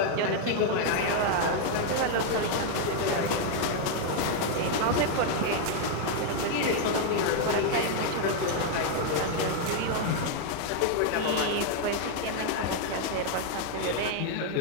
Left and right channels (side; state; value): both; different; correlation 0.00